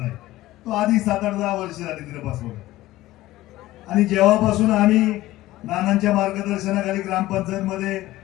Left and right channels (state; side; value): quieter; right; 16.6 dB